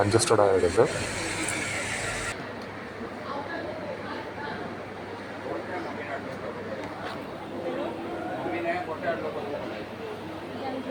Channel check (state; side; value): identical; both; correlation 1.00